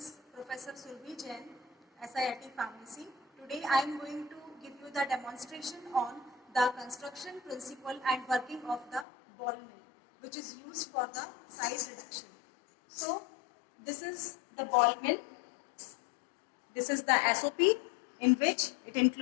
Professor Surbhi Jain, SIIT Pharmacy. Today I am going to give you the demonstration on the construction principle and working of the ball mill, which is used for the size reduction. So this is the ball mill. This is the SOP, in which it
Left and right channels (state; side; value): drops out; right; at 9.1 s